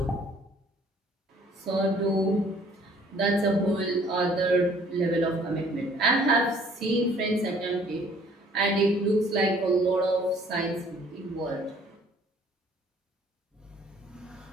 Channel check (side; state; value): both; normal; correlation 0.57